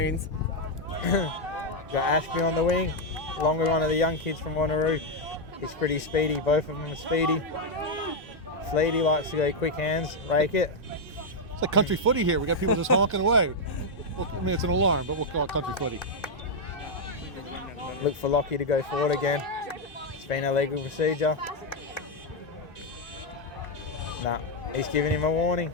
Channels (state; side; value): normal; both; correlation 0.00